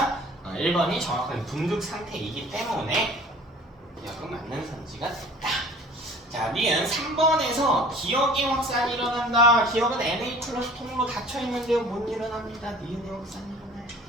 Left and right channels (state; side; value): normal; both; correlation 0.47